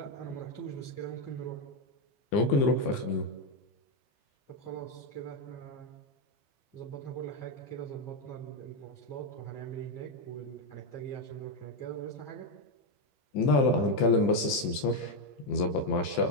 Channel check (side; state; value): right; late; 15 ms